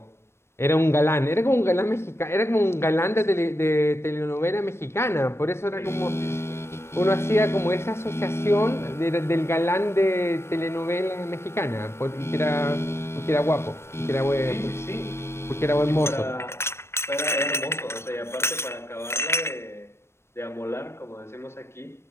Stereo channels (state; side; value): late; right; 0.12 ms